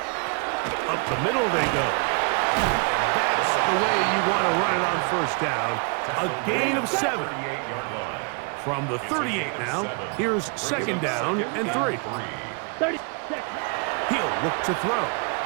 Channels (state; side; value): quieter; left; 37.0 dB